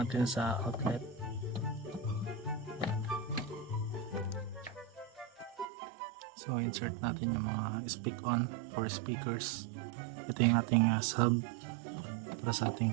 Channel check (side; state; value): left; drops out; at 5.7 s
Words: sa outlet. So insert natin yung mga speak on for speakers. Ito yung ating sub para sa ating